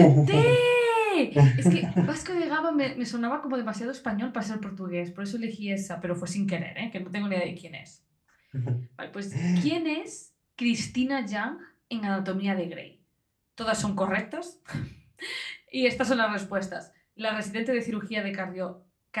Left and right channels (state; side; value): identical; both; correlation 1.00